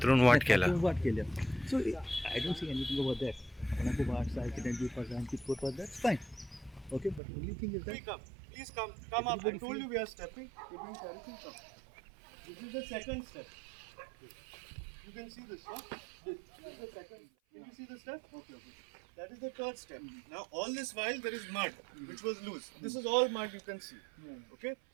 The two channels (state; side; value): drops out; left; at 7.2 s